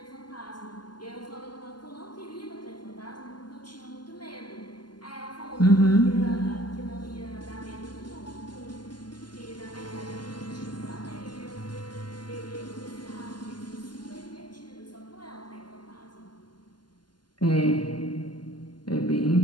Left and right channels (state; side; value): late; right; 0.71 ms